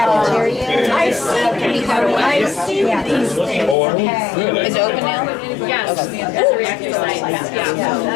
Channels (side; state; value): right; drops out; at 3.8 s